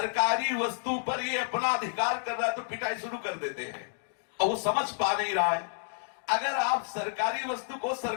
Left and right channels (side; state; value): right; silent; digital silence